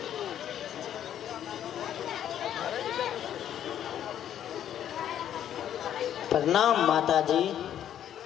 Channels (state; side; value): quieter; right; 10.4 dB